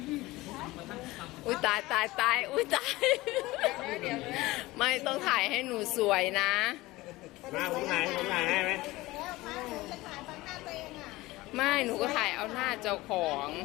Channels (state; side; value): quieter; right; 19.4 dB